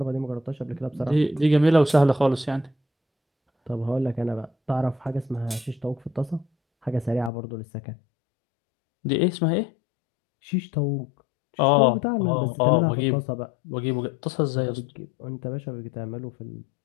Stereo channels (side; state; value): right; drops out; at 7.3 s